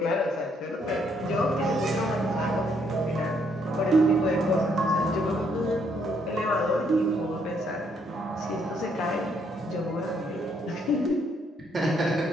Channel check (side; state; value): both; normal; correlation 0.71